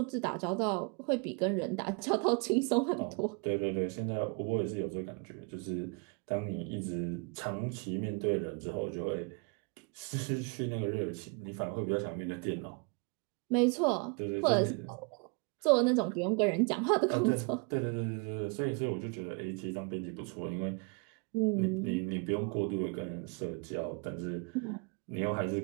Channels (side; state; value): left; quieter; 34.1 dB